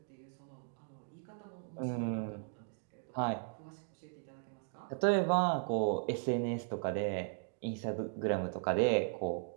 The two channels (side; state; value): left; silent; 53 dB below the other